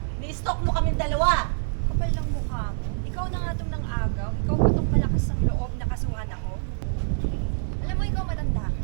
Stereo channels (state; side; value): silent; left; digital silence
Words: Ni-stalk mo kaming dalawa. Kapal lang mukha mo. Ikaw na nga itong nang-agaw. Ikaw ba itong malakas ng loob na kasuhan ako? Alam mo, ikaw matanda